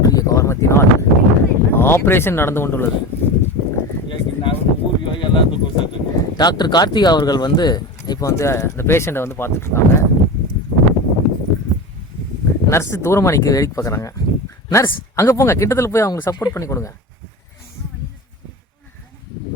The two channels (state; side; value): normal; both; correlation 0.26